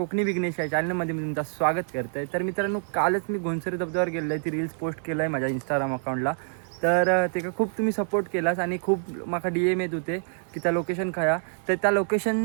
विघ्नेश या चॅनलमध्ये मी तुमचं स्वागत करतोय. तर मित्रांनो, कालच मी घोणसरी धबधब्यावर गेलो आहे. ती रील्स पोस्ट केलं आहे माझ्या इंस्टाग्राम अकाउंटला. तर ते खूप तुम्ही सपोर्ट केलास आणि खूप माका DM येत होते की त्या लोकेशन खाया. तर त्या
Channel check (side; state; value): left; silent; digital silence